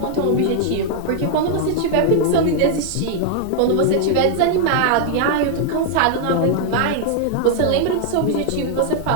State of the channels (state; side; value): different; both; correlation 0.00